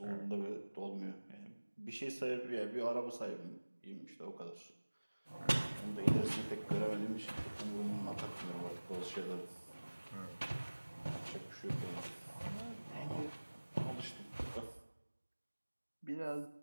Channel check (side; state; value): both; inverted; correlation -1.00